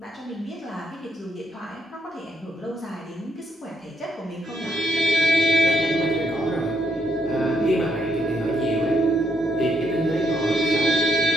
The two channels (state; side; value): normal; both; correlation 0.75